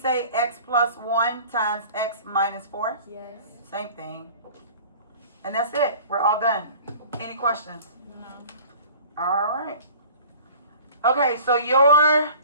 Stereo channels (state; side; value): inverted; both; correlation -0.45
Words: x plus 1 times x minus 4? Yes. Same thing. And that's it. We're all done. Any questions? No. All right. Okay, so your